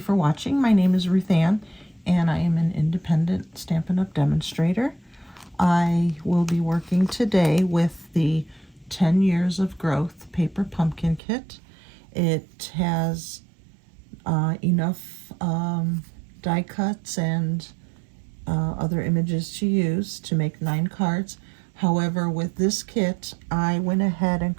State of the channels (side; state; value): left; drops out; at 11.2 s